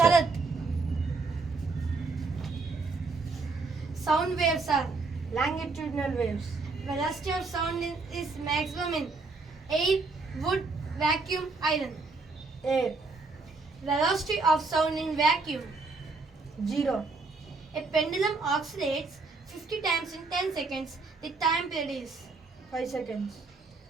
Sound waves are Longitudinal waves. velocity of sound is maximum in air, wood, vacuum, iron. Air. Velocity of sound in vacuum. 0. A pendulum oscillates 50 times in 10 seconds. The time period is 5 seconds.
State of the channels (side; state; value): left; quieter; 3.9 dB